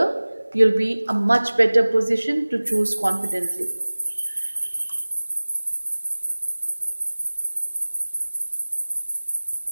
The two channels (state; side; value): inverted; both; correlation -1.00